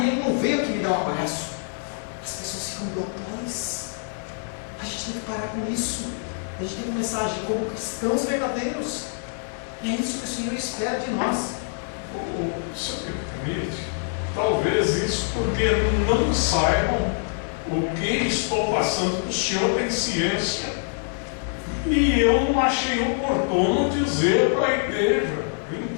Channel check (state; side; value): silent; right; 60 dB below the other